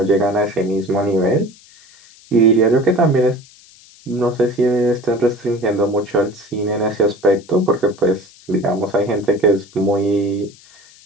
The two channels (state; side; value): noise; left; hiss, 25 dB below the sound